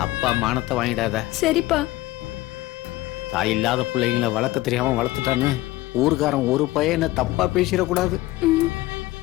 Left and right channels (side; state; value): right; quieter; 17.8 dB